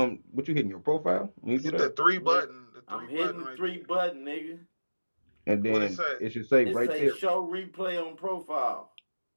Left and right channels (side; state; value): both; inverted; correlation -1.00